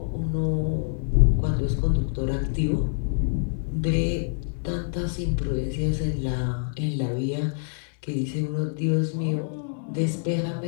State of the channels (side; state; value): right; silent; digital silence